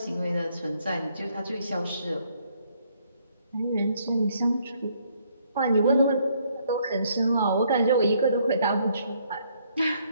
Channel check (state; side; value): inverted; both; correlation -0.68